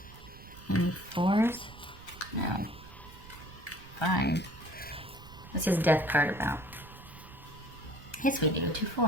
4s? No. 5. What's his death card about? Yes, we do. 2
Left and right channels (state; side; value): noise; right; rumble, 18 dB below the sound